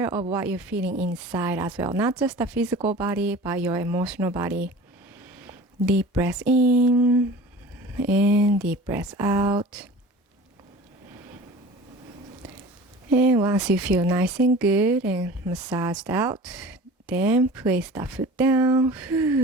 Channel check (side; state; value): both; normal; correlation 0.40